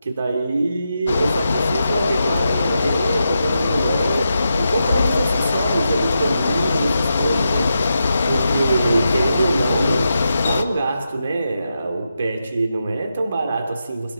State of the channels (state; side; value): inverted; both; correlation -0.87